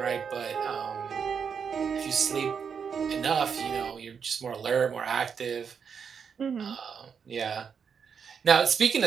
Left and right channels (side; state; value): left; quieter; 6.6 dB